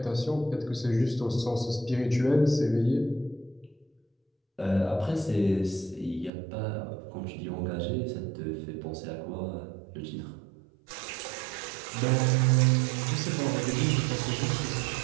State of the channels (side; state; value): left; drops out; at 6.3 s